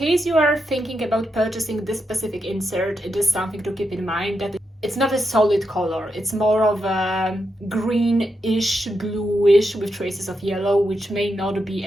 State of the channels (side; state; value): both; normal; correlation 0.85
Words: you are thinking about purchasing this specific insert, it is something to keep in mind that it's not a solid color. It's more of a greenish, bluish with traces of yellow, which may not be